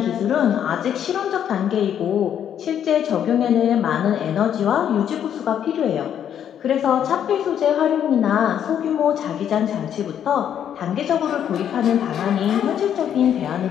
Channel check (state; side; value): quieter; right; 9.4 dB